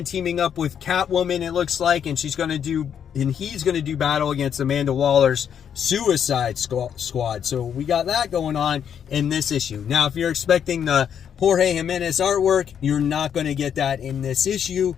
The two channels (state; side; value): quieter; right; 8.4 dB